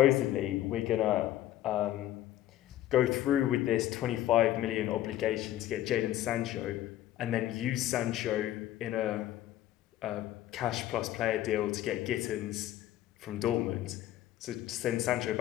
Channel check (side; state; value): right; quieter; 13.5 dB